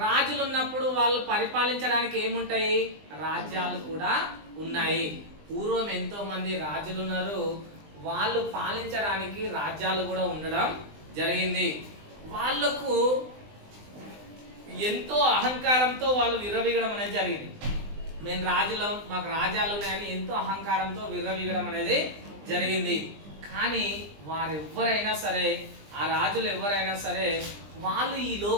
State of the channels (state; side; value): late; left; 20 ms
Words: రాజులు ఉన్నప్పుడు వాళ్ళు పరిపాలించడానికి ఏముంటాయి? రాజ్యాలు కూడా ఉన్నాయి. పూర్వం ఎంతో మంది రాజులు ఉన్నారు, వాళ్ళు పాలించడానికి రాజ్యాలు కూడా ఉండడం జరిగింది. వాళ్ళకు ఎంతో అహంకారంతో వాళ్ళు విర్రవీగడం అనేది జరిగింది. మేము రాజులం, మాకు రాజ్యాలు ఉన్నాయని ఎంతో అహంకారంతో విర్రవీగడం అనేది జరిగింది. కానీ వారెవ్వరైనా సరే, ఆ రాజులు ఎవరైనా సరే, వాళ్ళు ఈ